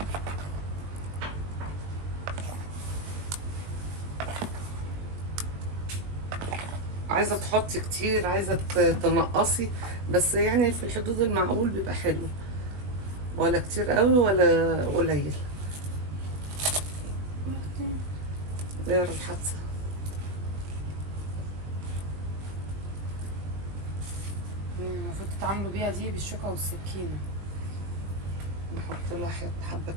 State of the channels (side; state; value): left; late; 20 ms